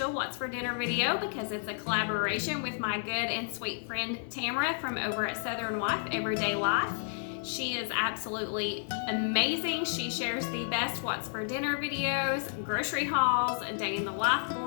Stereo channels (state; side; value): silent; right; digital silence